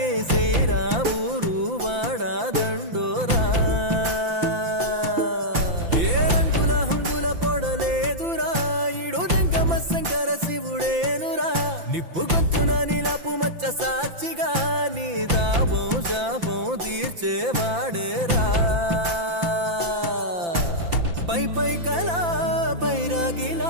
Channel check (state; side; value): late; left; 5.9 ms